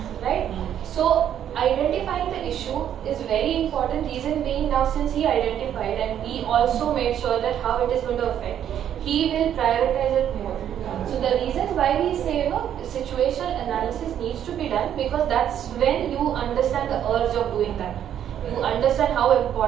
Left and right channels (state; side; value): quieter; left; 10.0 dB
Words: right? So identifying the issue is very important. Reason being, now since he identified and we also made sure that how it is going to affect, he will prioritize it more. So the reasons why we say, situational analysis needs to be done, because that's when you understand the urge of doing that. You understand how